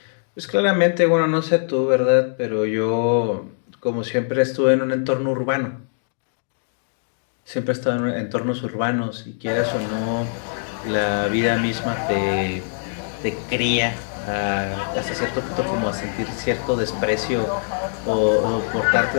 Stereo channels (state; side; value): silent; right; digital silence